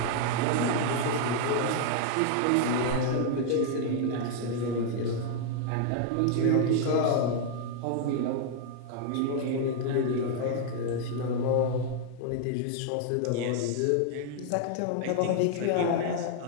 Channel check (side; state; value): both; different; correlation 0.00